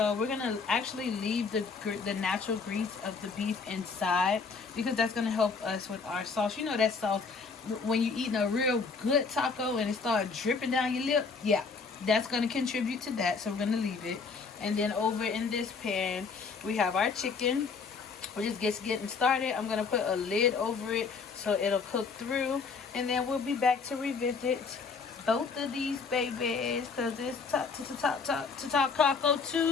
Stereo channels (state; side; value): quieter; right; 4.9 dB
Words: we're gonna actually leave the natural grease of the beef inside because that's gonna help us with our sauce. You know that sauce, when you're eating a real good taco and it starts dripping down your lip, yeah, that's gonna contribute to that. So we're gonna leave it. And then over in this pan, we have our chicken. We're just getting started. I'm gonna put a lid over it so it'll cook through, and then we'll be back to revisit both of these babies because it's Taco